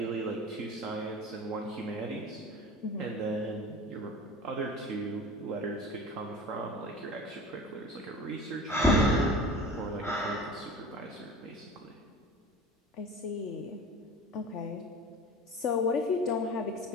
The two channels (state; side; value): normal; both; correlation 0.37